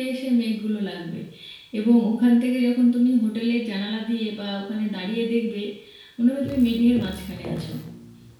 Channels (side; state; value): both; identical; correlation 1.00